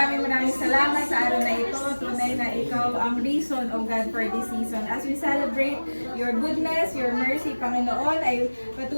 salamat sa araw na ito. Tunay na ikaw ang reason, O God, for this season. As we celebrate your goodness, your mercy, Panginoon, ay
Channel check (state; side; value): inverted; both; correlation -1.00